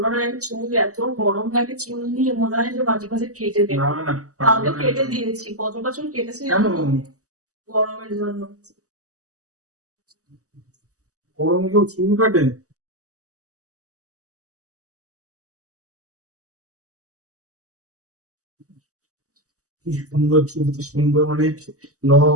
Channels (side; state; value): left; late; 0.66 ms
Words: না, এই চুল এত গরম লাগে, চুল নিয়ে মনে হয় যে মাঝে মাঝে কেটে দেবো। না না তাও তো কেটে দিয়েছি, কতটা চুল কেটেছি কেন, জানো? গরমের জন্য। গরমে কেউ চুল কাটে? কি সুন্দর চুল, কি সুন্দর মানে